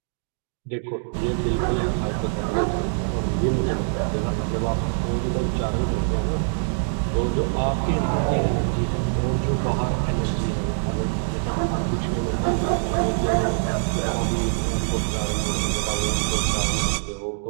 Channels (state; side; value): silent; left; digital silence